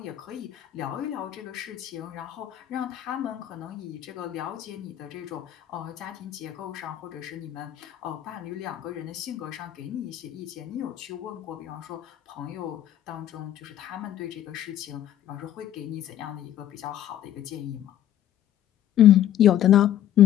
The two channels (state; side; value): quieter; right; 11.7 dB